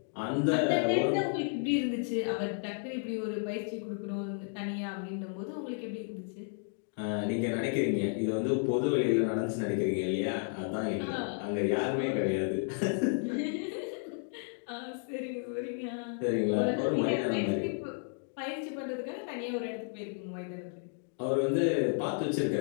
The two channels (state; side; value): silent; right; 56 dB below the other